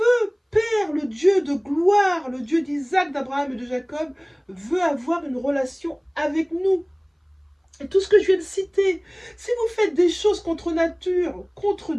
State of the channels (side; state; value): both; identical; correlation 1.00